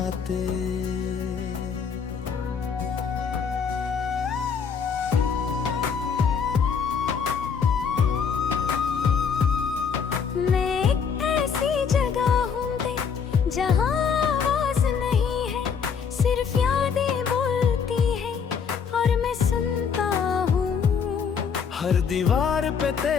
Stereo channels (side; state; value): right; quieter; 6.5 dB